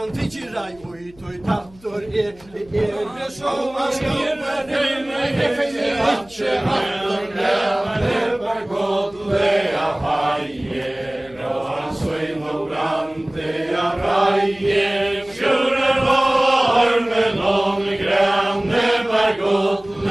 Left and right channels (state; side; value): noise; left; hum, 26 dB below the sound